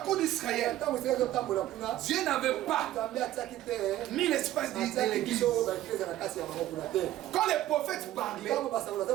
d'Israël, Dieu n'avait pas mis l'espace de l'église. Quand les prophètes parlaient,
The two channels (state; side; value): quieter; left; 14.0 dB